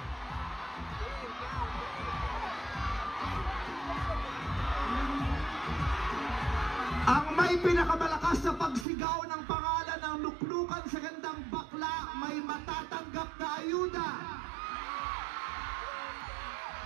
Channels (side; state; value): left; drops out; at 8.8 s